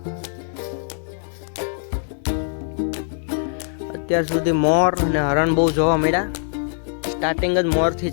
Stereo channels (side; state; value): right; silent; digital silence